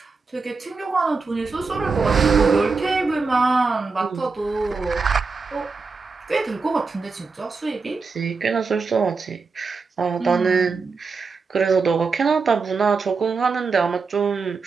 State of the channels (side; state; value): left; quieter; 4.6 dB